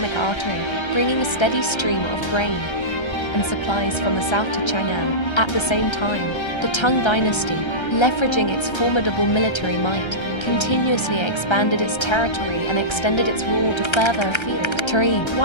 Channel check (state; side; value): late; right; 1.3 ms